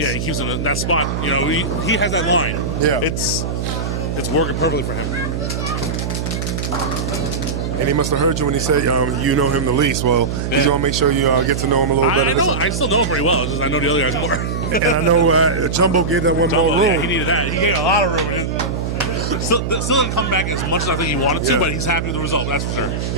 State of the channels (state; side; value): noise; right; hum, 3 dB below the sound